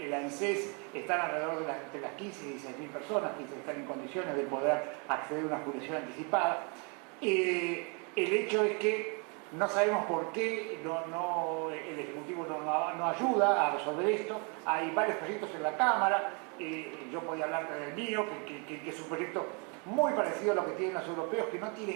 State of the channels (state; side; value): quieter; left; 34.8 dB